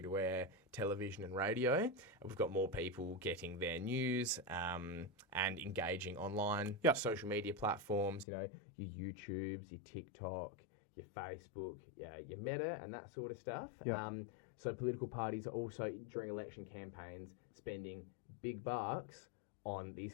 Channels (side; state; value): right; drops out; at 8.2 s